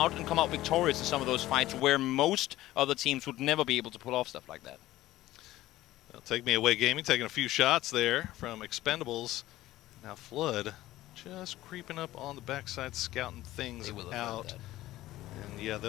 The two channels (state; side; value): quieter; right; 15.8 dB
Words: victorious in some of those fights where most other teams would never be able to pull off stuff like that. Well, Take Me Away Gaming taking a few shots there from Expendables. Now Flood just creeping up on the backside, scouting things out. And yeah,